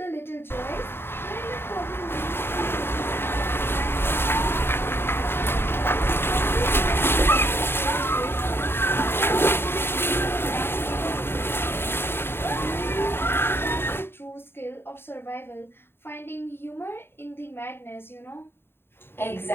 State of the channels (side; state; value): right; late; 0.11 ms